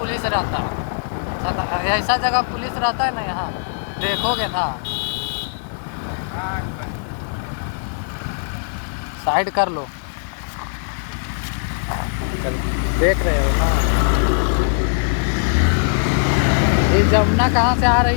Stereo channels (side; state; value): right; silent; 65 dB below the other